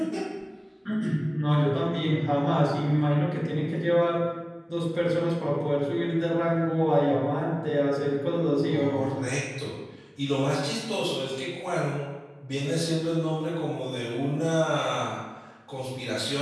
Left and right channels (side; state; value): both; identical; correlation 1.00